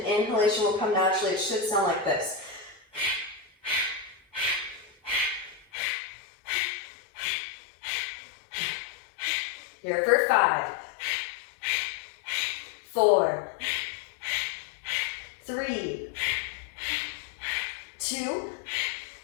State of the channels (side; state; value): right; drops out; at 5.7 s